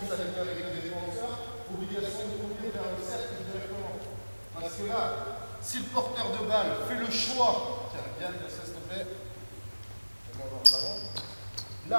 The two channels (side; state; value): both; inverted; correlation -1.00